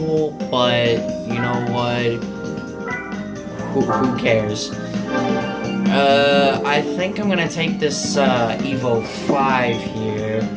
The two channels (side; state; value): both; identical; correlation 1.00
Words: but you know what? Who cares? I think I'm gonna take this Evo 5 here.